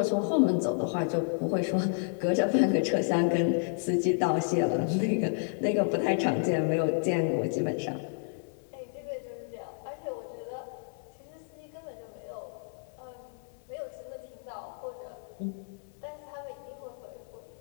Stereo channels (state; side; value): silent; right; digital silence